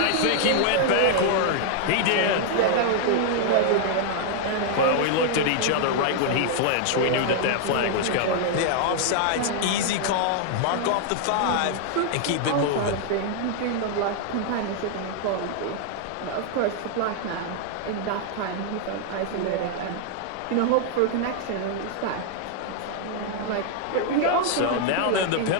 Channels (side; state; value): both; different; correlation -0.01